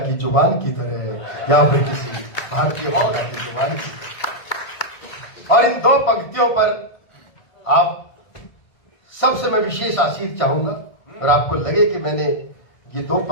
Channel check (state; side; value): late; right; 1.6 ms